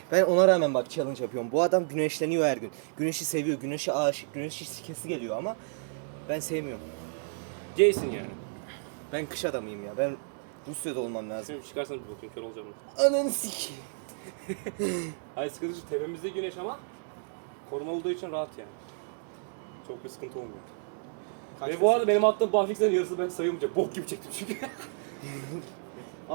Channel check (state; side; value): silent; left; digital silence